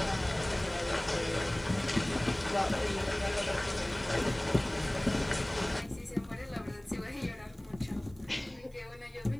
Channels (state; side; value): noise; right; hiss, 30 dB below the sound